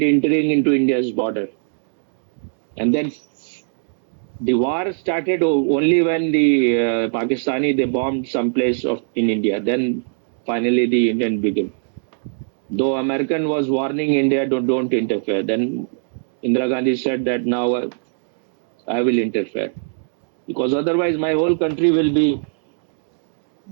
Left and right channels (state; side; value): silent; left; digital silence